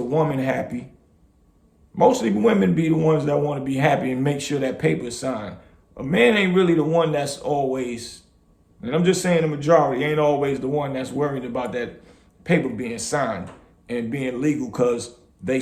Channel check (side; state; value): both; identical; correlation 1.00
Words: woman happy. Mostly women be the ones that want to be happy and make sure that paper is signed. A man ain't really the one that's always, and I'm just saying the majority, ain't always the one that's worried about that paper being signed and being legal because they